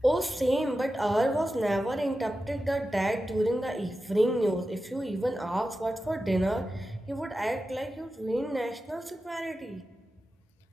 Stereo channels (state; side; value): normal; both; correlation 0.92